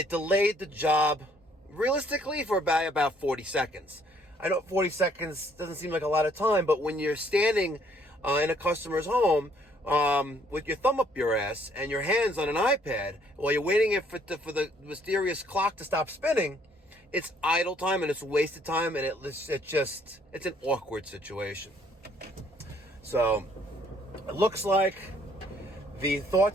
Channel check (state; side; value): normal; both; correlation 0.64